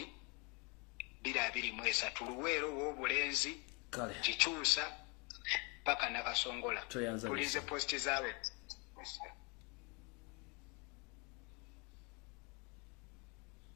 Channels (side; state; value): right; quieter; 31.5 dB